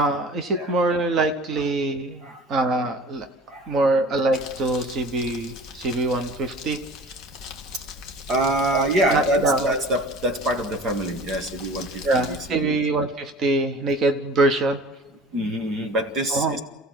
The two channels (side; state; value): both; normal; correlation 0.42